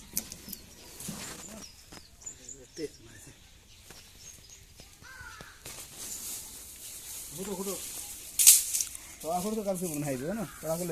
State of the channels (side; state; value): both; identical; correlation 1.00